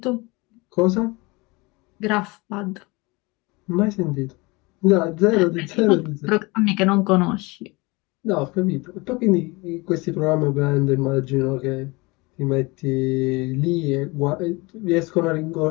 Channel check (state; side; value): quieter; right; 25.0 dB